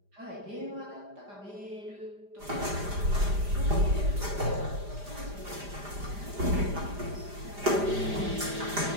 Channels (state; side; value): late; left; 5.0 ms